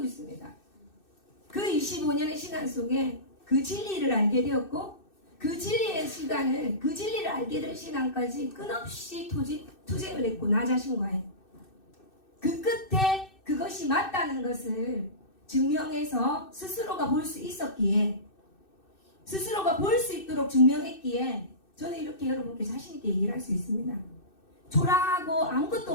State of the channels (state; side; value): late; right; 2.6 ms